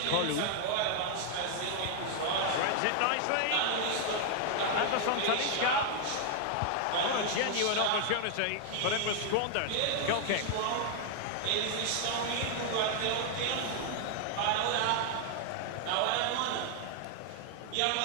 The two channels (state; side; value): different; both; correlation 0.00